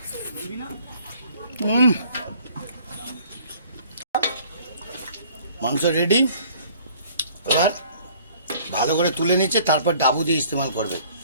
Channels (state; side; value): inverted; both; correlation -0.55